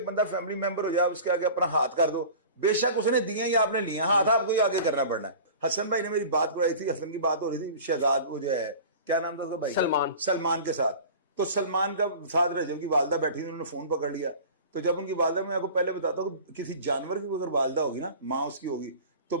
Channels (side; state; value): both; inverted; correlation -0.39